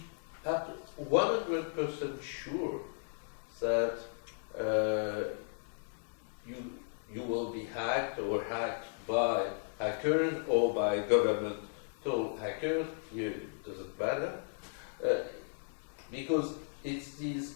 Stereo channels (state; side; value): silent; right; digital silence